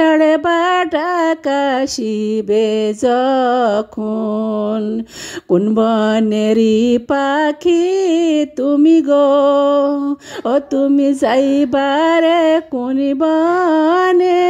বাটা কাশিবে যখন। কোন বনেরই পাখি তুমি গো, ও তুমি যাইবারে কোন বনে?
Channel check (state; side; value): identical; both; correlation 1.00